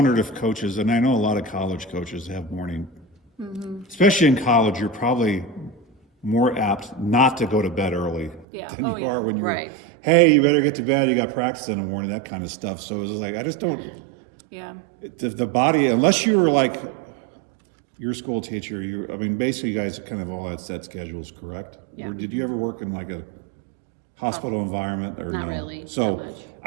if coaches, and I know a lot of college coaches have morning, especially in college, you're probably more apt not to go to bed early Yeah. than Oh, you yeah. are when you're, Right. hey, you better get to bed, you got practice in the morning, that kind of stuff. So it was like, I just don't, Yeah. the body, unless you were like your school teacher, basically you guys kind of all had set schedules, correct? Yeah. Or did you ever work in like a hospital environment or Not no? really, So not much.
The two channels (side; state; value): left; drops out; at 8.5 s